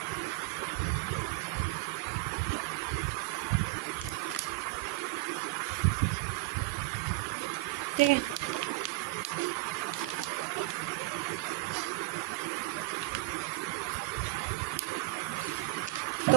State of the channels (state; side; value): quieter; left; 21.1 dB